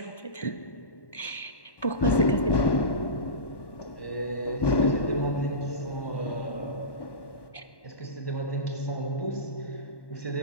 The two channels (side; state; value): right; late; 1.1 ms